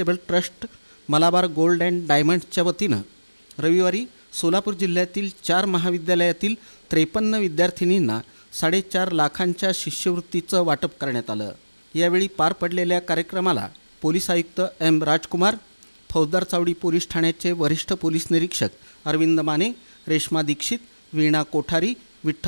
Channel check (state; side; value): inverted; both; correlation -1.00